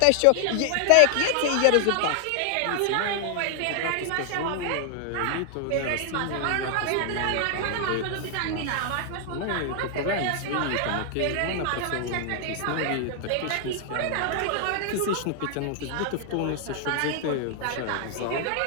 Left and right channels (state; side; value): different; both; correlation 0.00